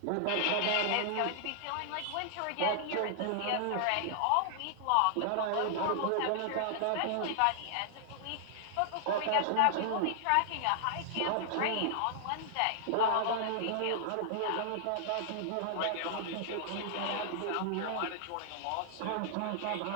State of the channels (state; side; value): different; both; correlation -0.01